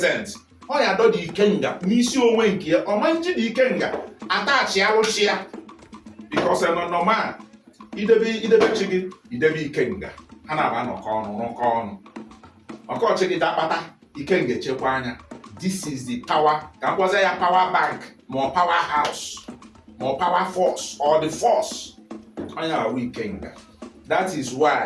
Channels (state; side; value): identical; both; correlation 1.00